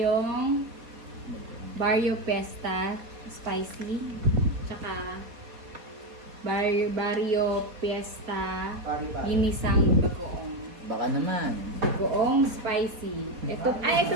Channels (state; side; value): late; left; 4.2 ms